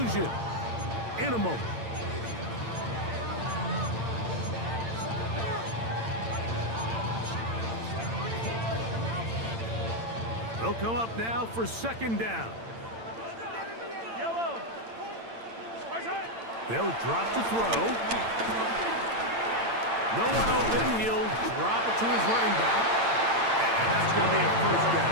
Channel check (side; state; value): left; late; 8.8 ms